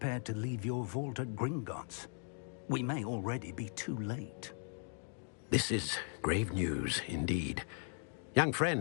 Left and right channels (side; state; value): right; silent; 52 dB below the other